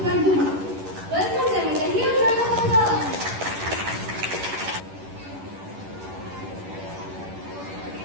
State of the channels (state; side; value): late; left; 11 ms